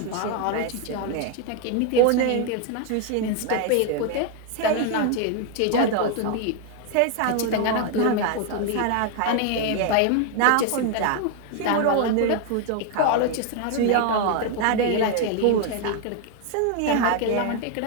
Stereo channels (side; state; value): both; different; correlation 0.01